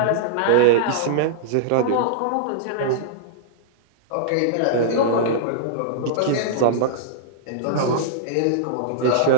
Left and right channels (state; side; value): different; both; correlation -0.02